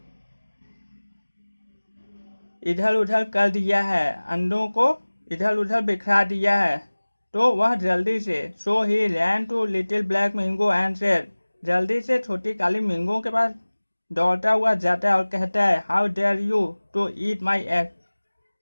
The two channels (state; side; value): inverted; both; correlation -1.00